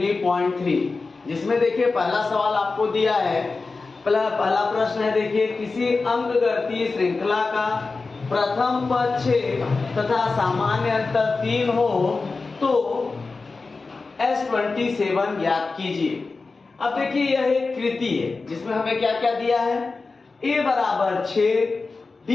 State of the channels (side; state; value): right; quieter; 4.0 dB